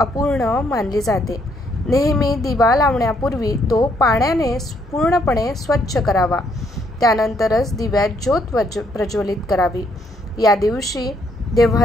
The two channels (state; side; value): normal; both; correlation 0.71